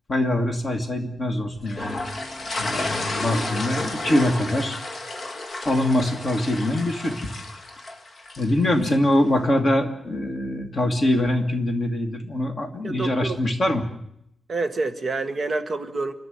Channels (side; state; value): both; normal; correlation 0.87